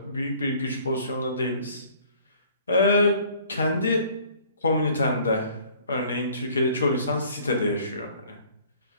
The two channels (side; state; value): both; inverted; correlation -0.55